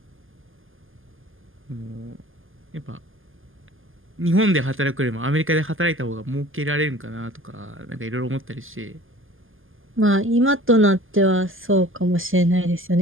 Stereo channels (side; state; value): left; late; 0.59 ms